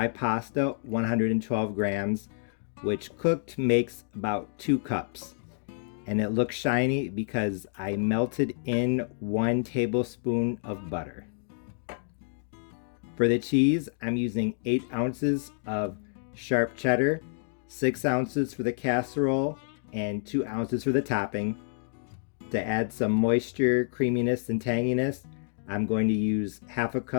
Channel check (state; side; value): silent; right; digital silence